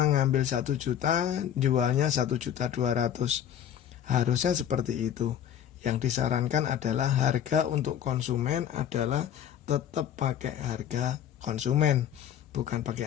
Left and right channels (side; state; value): right; quieter; 9.7 dB